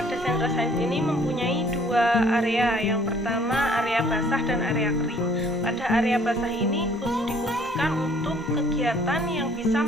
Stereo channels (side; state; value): both; normal; correlation 0.58